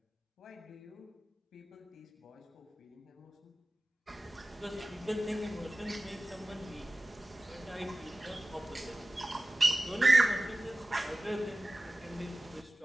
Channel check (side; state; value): both; normal; correlation 0.97